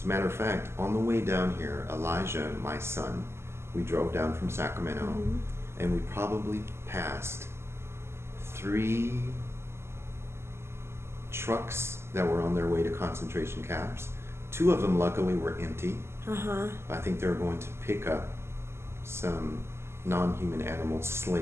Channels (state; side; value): late; left; 0.12 ms